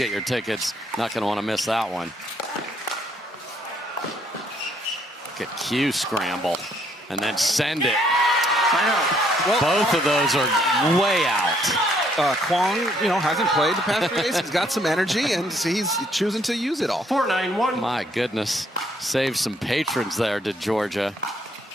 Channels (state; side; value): normal; both; correlation 0.68